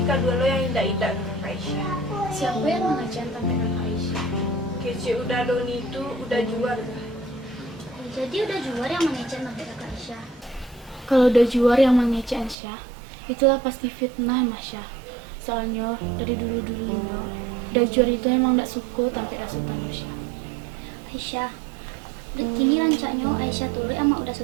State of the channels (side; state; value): left; drops out; at 12.6 s